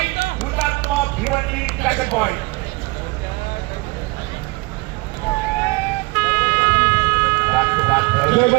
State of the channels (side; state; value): left; quieter; 24.3 dB